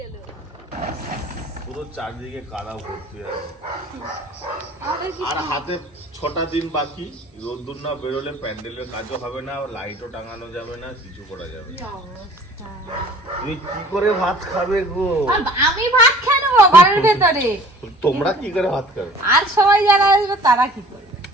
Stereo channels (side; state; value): both; normal; correlation 0.49